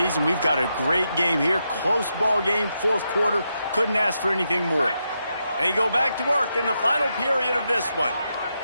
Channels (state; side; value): inverted; both; correlation -0.84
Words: We've got a great game here. Close ball game, fourth quarter. Couldn't ask for anything more. They go back to work in the final period of this one.